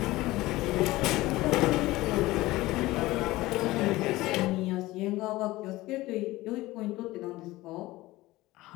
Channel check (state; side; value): quieter; right; 18.6 dB